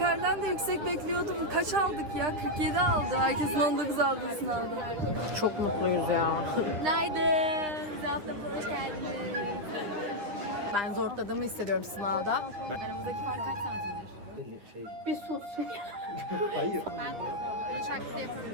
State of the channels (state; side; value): late; left; 9.9 ms